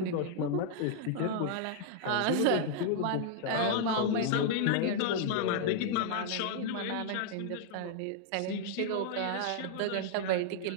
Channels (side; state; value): both; different; correlation -0.01